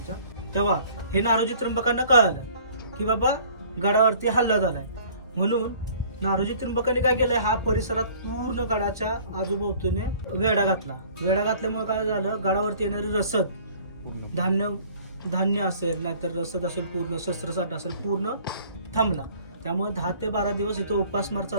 तेव्हा हे नारोजी त्रिंबकांना कळालं की बाबा गडावरती हल्ला झालाय. म्हणून नारोजी त्रिंबकांनी काय केलंय, हा परिसरात पूर्ण गडाच्या आजूबाजूने वेढा घातला. वेढा घातल्यामुळे काय झालं, गडावरती येणारी रसद, धान्य असेल, नाहीतर रसद असेल, पूर्ण शस्त्रसाठा असेल, पूर्ण थांबला. त्यामुळे 10 ते 12 दिवस इथं उपासमार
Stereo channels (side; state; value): both; inverted; correlation -0.52